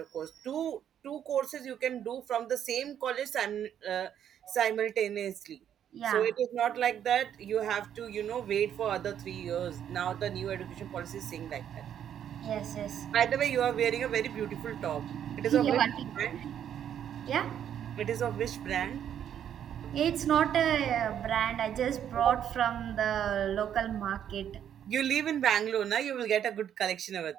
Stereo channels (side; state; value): left; quieter; 9.6 dB